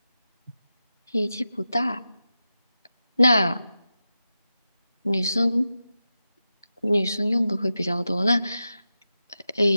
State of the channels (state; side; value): inverted; both; correlation -0.92